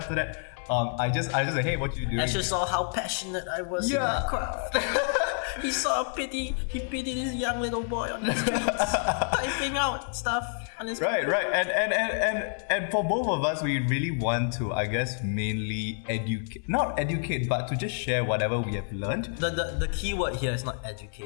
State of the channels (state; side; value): silent; right; 59 dB below the other